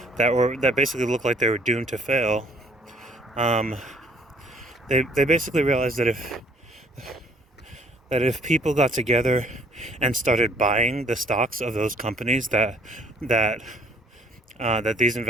basically looked like they were doomed to fail. They basically realized that if people got together and started buying the stocks of those companies that these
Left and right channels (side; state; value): both; normal; correlation 0.58